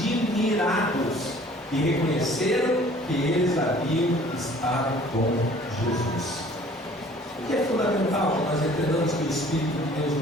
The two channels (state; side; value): normal; both; correlation 0.52